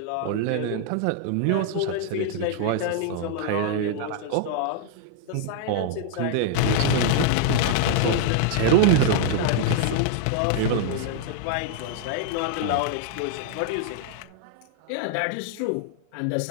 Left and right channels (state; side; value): different; both; correlation 0.00